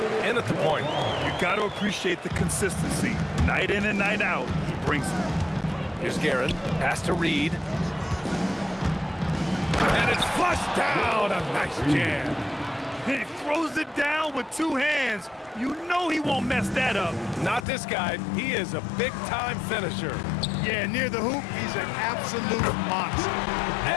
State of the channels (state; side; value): drops out; right; at 17.7 s